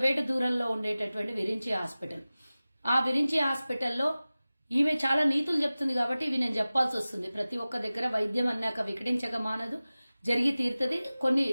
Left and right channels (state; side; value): inverted; both; correlation -0.97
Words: దూరంలో ఉండేటటువంటి విరించి హాస్పిటల్. ఆ విరించి హాస్పిటల్లో ఈమె చాలా నీతులు చెప్తుంది కాబట్టి ఇవి నేను చెప్పాల్సి వస్తుంది. ప్రతి ఒక్క దగ్గర వైద్యం అన్నాక వికటించక మానదు, జరిగి తీరుతుంది. కొన్ని